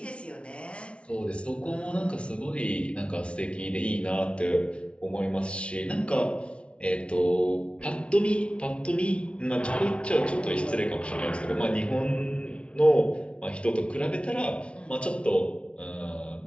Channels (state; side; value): late; right; 0.060 ms